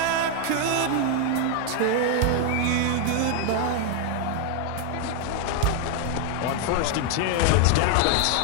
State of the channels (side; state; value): both; different; correlation 0.01